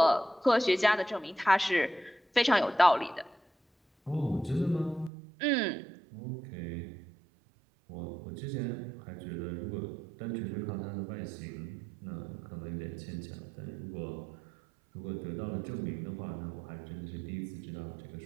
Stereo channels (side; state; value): left; drops out; at 5.1 s